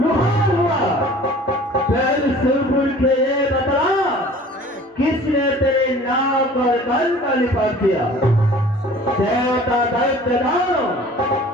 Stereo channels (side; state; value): both; normal; correlation 0.47